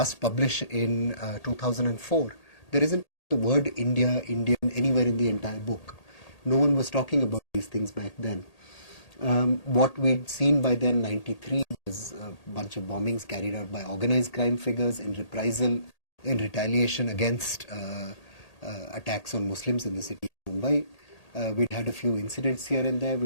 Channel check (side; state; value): right; late; 1.8 ms